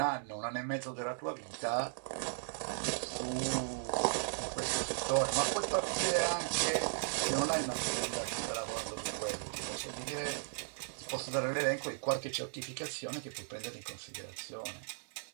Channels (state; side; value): silent; left; 53 dB below the other